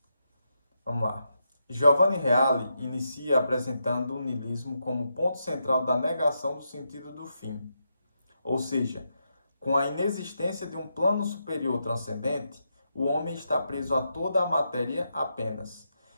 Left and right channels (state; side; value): inverted; both; correlation -0.84